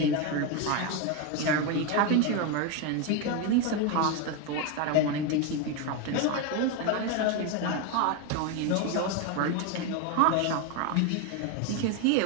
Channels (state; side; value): different; both; correlation 0.02